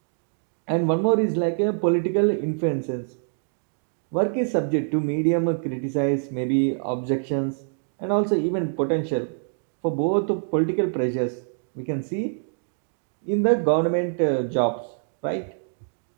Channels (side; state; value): left; silent; digital silence